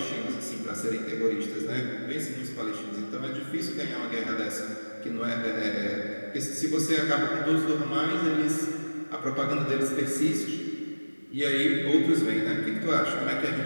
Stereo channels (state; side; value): inverted; both; correlation -1.00